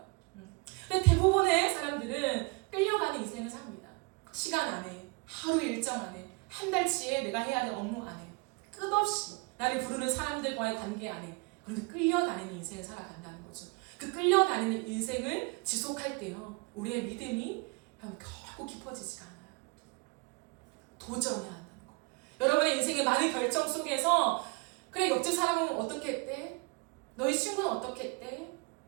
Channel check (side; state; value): left; quieter; 29.2 dB